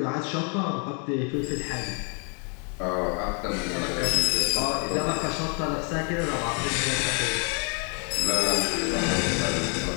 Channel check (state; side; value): quieter; right; 38.5 dB